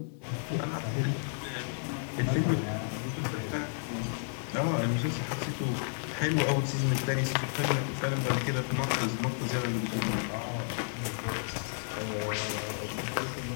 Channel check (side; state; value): right; silent; digital silence